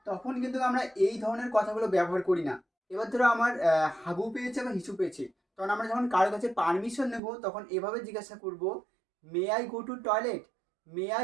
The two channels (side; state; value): left; drops out; at 7.2 s